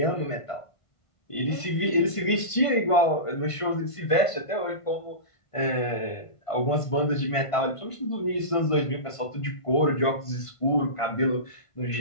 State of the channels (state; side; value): late; right; 1.5 ms